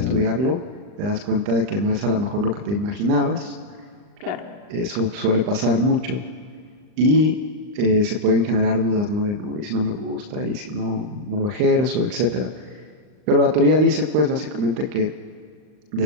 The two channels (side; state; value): left; late; 39 ms